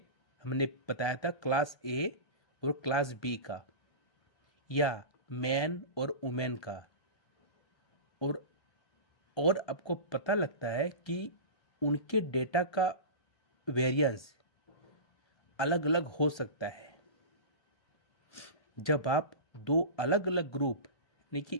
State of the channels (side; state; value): right; late; 1.3 ms